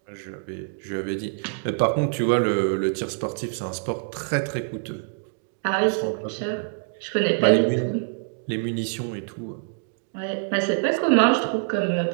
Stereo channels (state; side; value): silent; left; digital silence